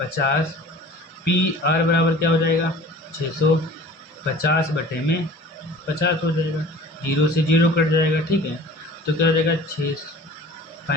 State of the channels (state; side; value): normal; both; correlation 0.44